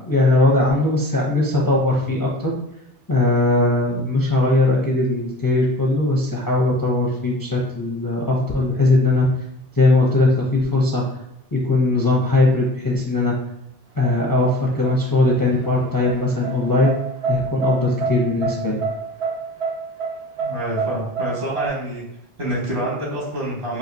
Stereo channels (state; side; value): normal; both; correlation 0.43